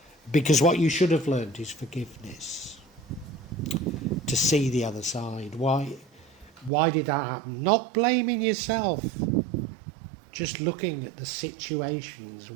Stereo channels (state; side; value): drops out; left; at 6.7 s